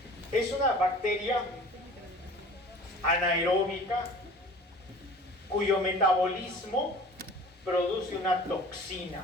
Es una bacteria anaeróbica cuyo metabolismo produce una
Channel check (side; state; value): both; normal; correlation 0.43